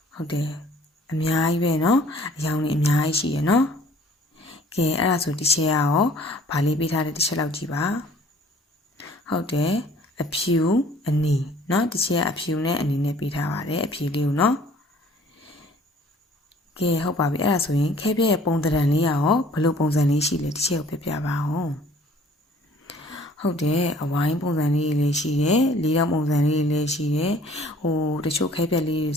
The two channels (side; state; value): both; normal; correlation 0.54